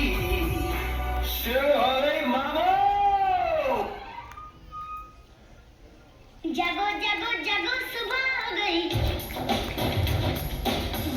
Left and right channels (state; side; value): identical; both; correlation 1.00